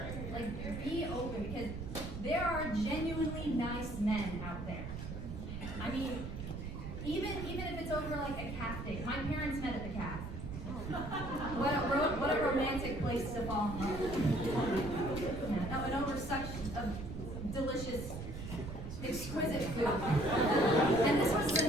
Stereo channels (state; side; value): noise; right; rumble, 7 dB below the sound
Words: Like, be open, because there are genuinely nice men out there. I mean, even if it's over like a calf date. My parents met at the calf. What a romantic place to fall in love. Yeah, and over such a delicious, exquisite food. And this was the